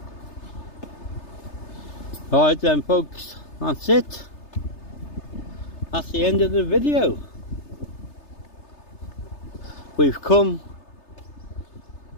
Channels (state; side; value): late; right; 3.3 ms